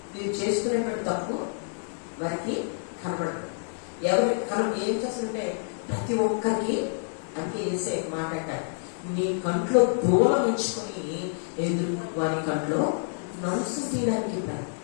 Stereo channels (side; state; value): right; silent; digital silence